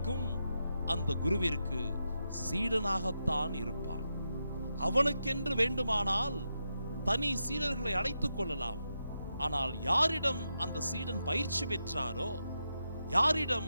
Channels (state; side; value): inverted; both; correlation -0.86